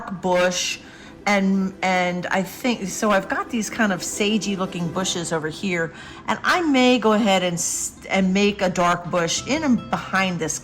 bush, and I think, so I've got these kind of sagey looking bushes over here, and I may go ahead and make a dark bush in and behind this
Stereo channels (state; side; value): identical; both; correlation 1.00